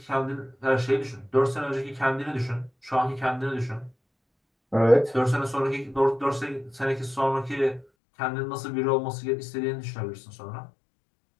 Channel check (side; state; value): right; drops out; at 7.9 s